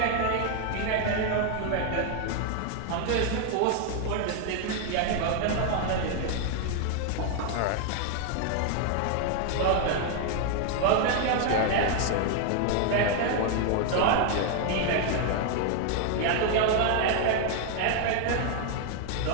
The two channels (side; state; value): both; different; correlation 0.00